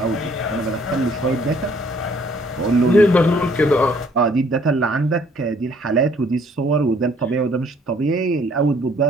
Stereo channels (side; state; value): both; normal; correlation 0.61